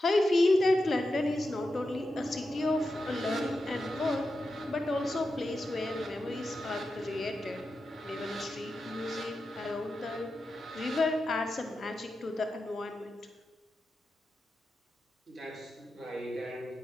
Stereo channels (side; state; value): both; normal; correlation 0.90